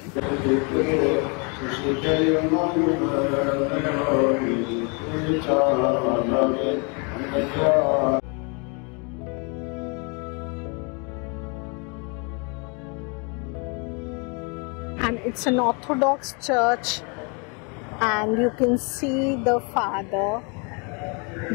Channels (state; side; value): quieter; right; 33.8 dB